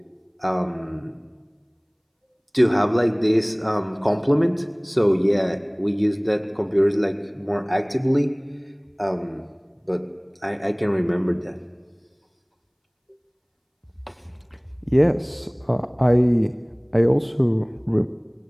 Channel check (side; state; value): both; identical; correlation 1.00